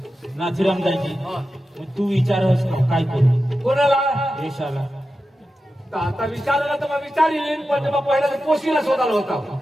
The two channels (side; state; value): both; normal; correlation 0.91